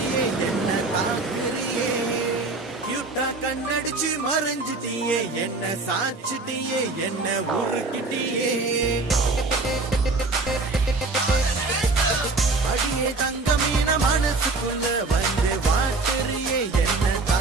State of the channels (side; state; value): left; quieter; 3.5 dB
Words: என்ன தாக்குறியே கியூட்டா கண்ணடிச்சு மறைஞ்சிட்டியே என்ன சாச்சிட்டியே என்ன உருக்கிட்டியே அடியே தங்கமீன மனசுக்குள்ள வந்து வாட்டுறியே என்ன